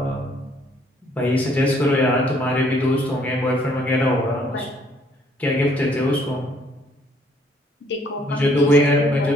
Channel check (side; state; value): both; normal; correlation 0.64